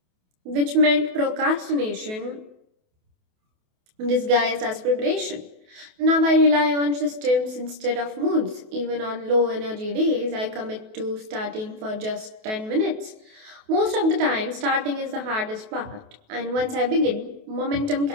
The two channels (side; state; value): left; late; 28 ms